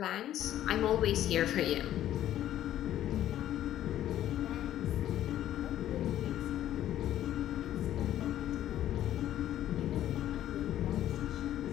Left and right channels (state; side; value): quieter; right; 12.3 dB